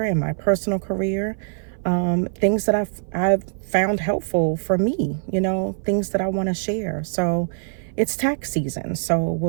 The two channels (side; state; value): left; silent; 57 dB below the other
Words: and my personal career. Things that I've found helpful for me, things that I want to share. So it's tax season, so